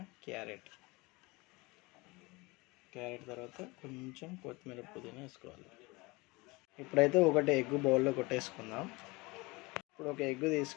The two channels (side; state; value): right; quieter; 24.3 dB